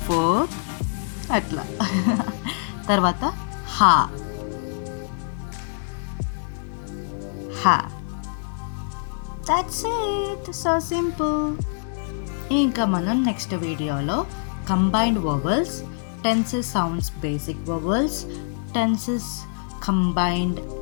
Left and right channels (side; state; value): right; silent; digital silence